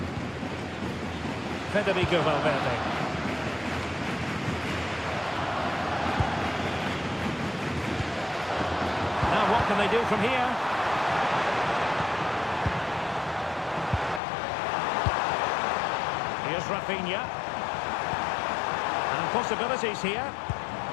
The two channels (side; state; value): right; drops out; at 14.2 s